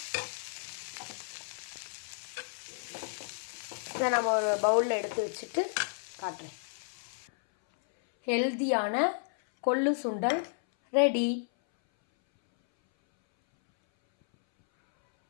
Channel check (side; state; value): right; silent; 56 dB below the other